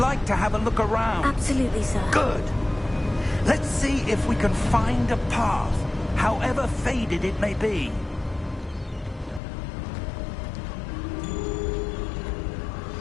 to have a look around. Absolutely, sir. Good. Let's see if we can find a path, however faded it may be.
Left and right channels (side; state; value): right; drops out; at 9.4 s